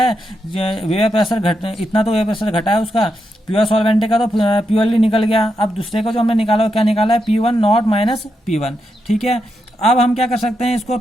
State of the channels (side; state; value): both; normal; correlation 0.84